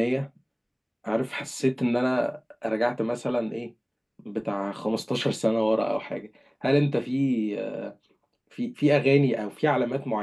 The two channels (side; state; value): both; identical; correlation 1.00